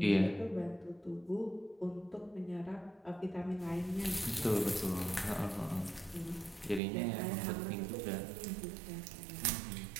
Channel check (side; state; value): left; drops out; at 6.8 s